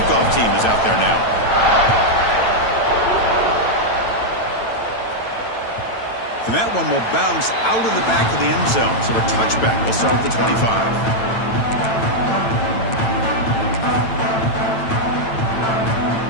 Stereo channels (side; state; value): right; late; 8.9 ms